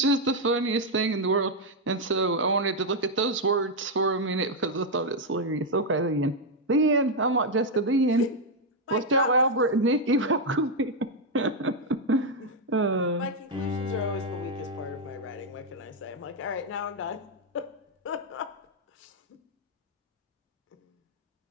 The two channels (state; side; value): normal; both; correlation 0.00